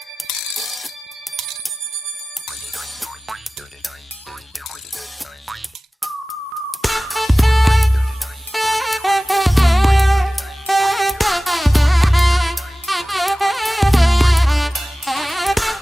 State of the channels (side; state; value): both; normal; correlation 0.97